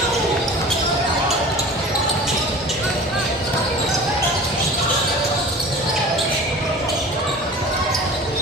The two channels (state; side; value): normal; both; correlation 0.40